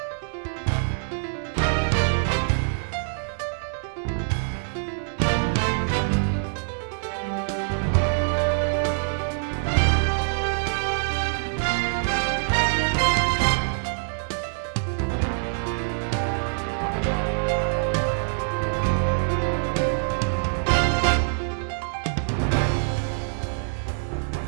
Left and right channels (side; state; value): left; silent; 62 dB below the other